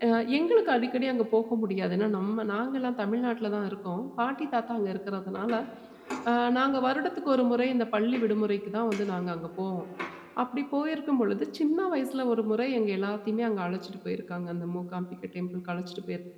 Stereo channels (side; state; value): both; identical; correlation 1.00